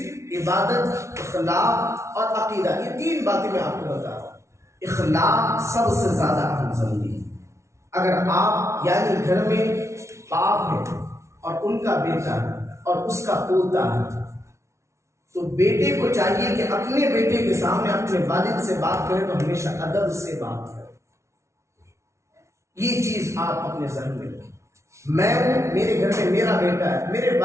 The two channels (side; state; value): left; late; 0.13 ms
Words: عبادت، اخلاق اور عقیدہ، یہ 3 باتیں میں آپ کو بتا رہا ہوں۔ اخلاق سب سے زیادہ اہم ضروری ہے۔ اگر آپ یعنی گھر میں باپ ہے اور ان کا بیٹا ہے اور اس کا پوتا ہے تو بیٹے کو چاہیے کہ اپنے بیٹے کے سامنے اپنے والد سے بات کرے تو ہمیشہ ادب سے بات کرے، یہ چیز آپ اپنے ذہن میں رکھیں۔ میں ہوں، میرے گھر میں میرا بیٹا ہے، میرے